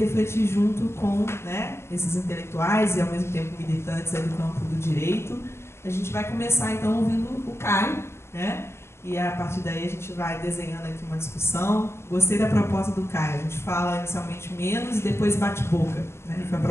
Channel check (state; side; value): late; right; 0.12 ms